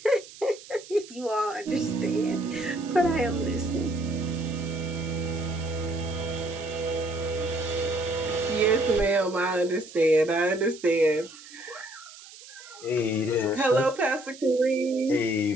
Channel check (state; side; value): noise; right; hiss, 18 dB below the sound